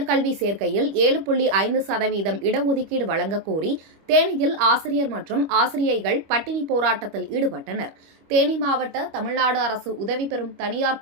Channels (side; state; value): left; late; 25 ms